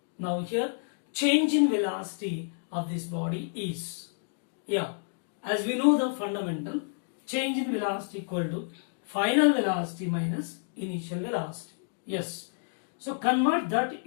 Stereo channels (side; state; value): right; silent; digital silence